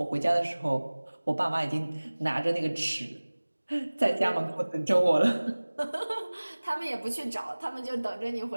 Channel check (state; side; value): inverted; both; correlation -1.00